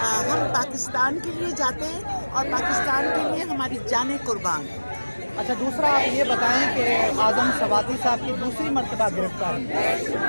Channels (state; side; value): inverted; both; correlation -1.00